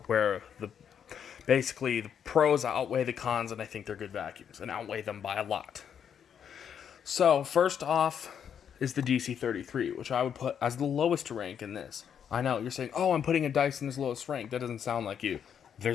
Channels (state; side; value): quieter; right; 8.2 dB